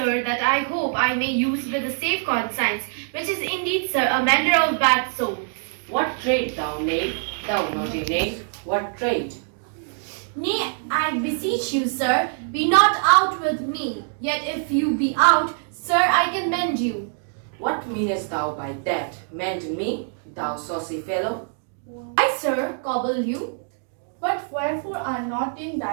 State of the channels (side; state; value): left; silent; digital silence